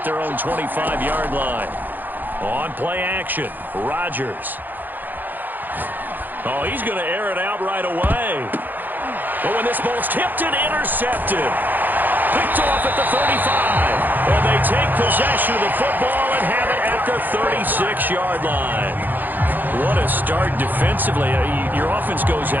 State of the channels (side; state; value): left; late; 0.086 ms